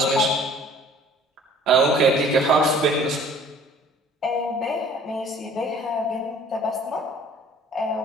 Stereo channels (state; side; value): normal; both; correlation 0.53